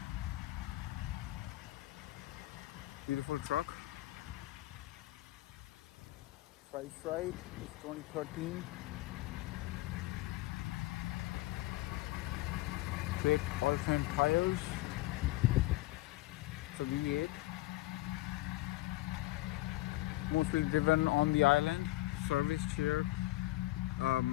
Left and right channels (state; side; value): quieter; right; 18.0 dB